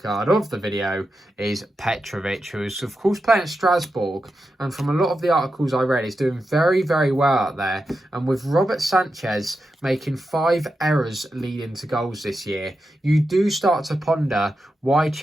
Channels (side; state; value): both; normal; correlation 0.89